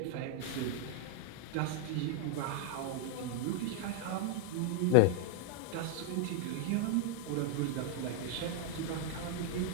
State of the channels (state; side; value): different; both; correlation 0.00